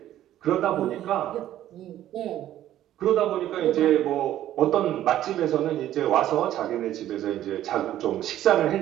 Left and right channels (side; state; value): left; quieter; 12.6 dB